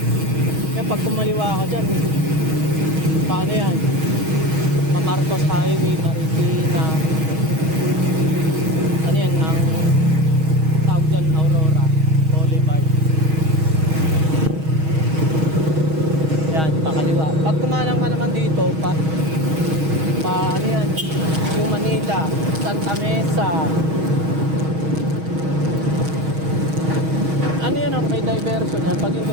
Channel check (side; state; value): left; late; 6.3 ms